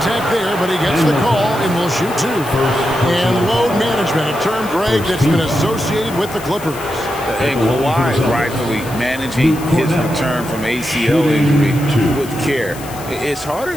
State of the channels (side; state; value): left; noise; hiss, 16 dB below the sound